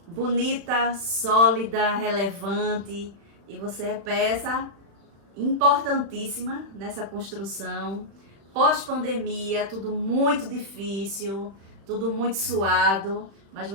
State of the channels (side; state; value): left; late; 36 ms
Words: bonita, sólida, relevante, e você é peça importantíssima nessa construção. Pós-pandemia, tudo muito difícil, tudo muito suado, mas